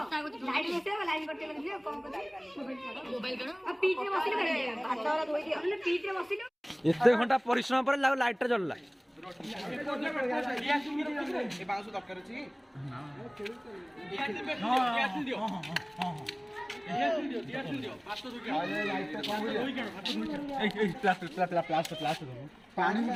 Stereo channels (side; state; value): both; identical; correlation 1.00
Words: लाइट लेसे लाइट करते लगियो कम को मोबाइल करो अब पीठ रे बसिले भात वाला धोई दियो हमने पीठ रे बसिले एते घंटा परिश्रम पर लाइट जलला ए बांसु दरकार अछि दियो पानी में